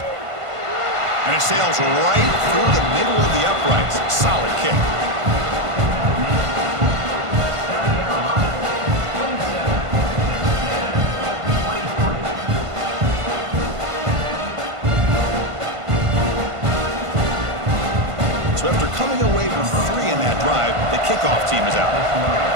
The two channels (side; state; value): left; late; 1.5 ms